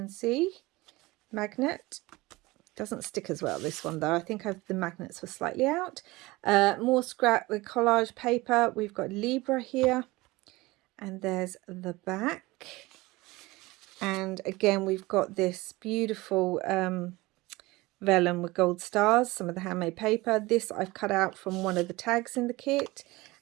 see, magnet. Doesn't stick as well, this one, though. I think the magnets were slightly out. More scrap with collage paper. We've got Libra here. And there's the back. And again, we've got this beautiful vellum with gold stars. Some of the handmade paper. This I've cut out from one of the tags in the kit.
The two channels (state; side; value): quieter; left; 21.1 dB